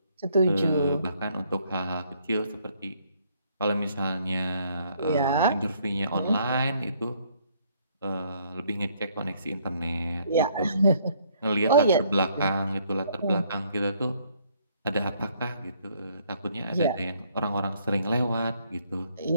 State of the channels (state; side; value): inverted; both; correlation -0.66